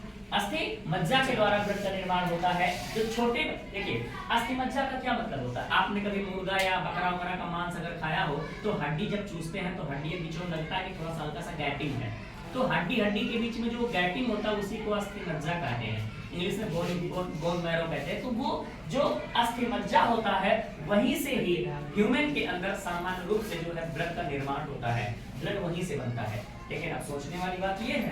अस्थि मज्जा के द्वारा ब्लड का निर्माण होता है। जो छोटे, देखिए अस्थि मज्जा का क्या मतलब होता है, आपने कभी मुर्गा या बकरा वगैरह का मांस अगर खाया हो तो हड्डी जब चूसते हैं तो हड्डी के बीच में लगता है कि थोड़ा सा हल्का सा गैपिंग है, तो हड्डी के बीच में जो गैपिंग होता है उसी को अस्थि मज्जा कहते हैं, इंग्लिश में बोन मैरो कहते हैं। तो वो जो अस्थि मज्जा होता है वहीं से ही ह्यूमन के अंदर सामान्य रूप से जो है ब्लड का निर्माण होता है, ब्लड वहीं से बनता है। लेकिन अब सोचने वाली बात ये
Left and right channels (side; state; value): both; identical; correlation 1.00